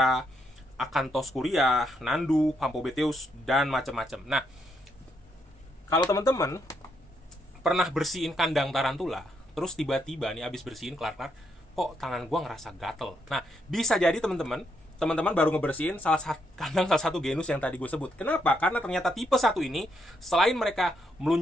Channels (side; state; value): both; normal; correlation 0.77